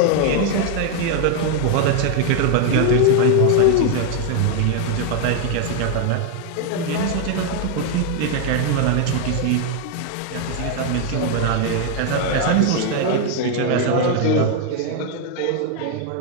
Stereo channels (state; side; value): different; both; correlation 0.01